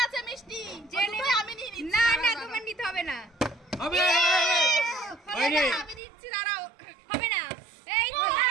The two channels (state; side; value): drops out; left; at 6.0 s